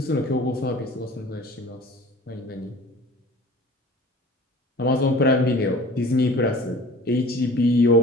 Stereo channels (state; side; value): normal; both; correlation 0.44